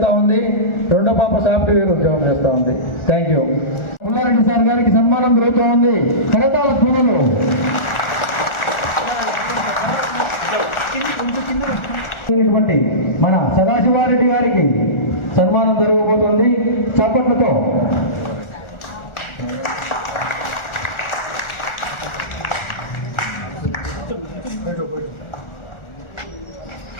ఉంది, రెండో పాప సాఫ్ట్వేర్ ఉద్యోగం చేస్తూ ఉంది. Thank you. పుల్లారెడ్డి సార్ గారికి సన్మానం జరుగుతూ ఉంది. కరతాళ ధ్వనులు. మన సదాశివారెడ్డి గారికి సన్మానం జరగబోతుంది. చప్పట్లతో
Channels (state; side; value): late; right; 1.4 ms